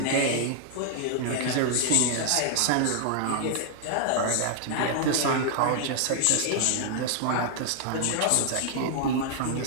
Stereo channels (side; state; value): both; different; correlation 0.00